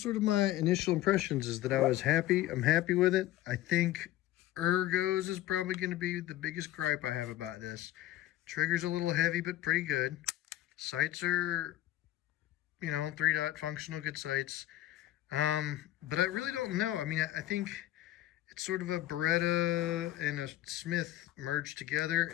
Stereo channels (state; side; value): quieter; right; 14.5 dB